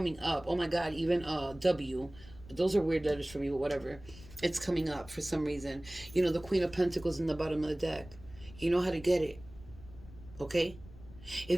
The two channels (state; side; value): noise; left; rumble, 19 dB below the sound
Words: up. Oh my God, even W. Those are weird letters for me, but whatever. It's coming up for some reason. You know, the Queen of Pentacles in the bottom of the deck. You know how to get it. Okay?